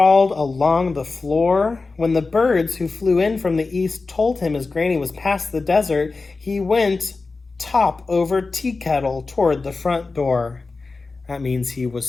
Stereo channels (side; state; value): right; quieter; 3.9 dB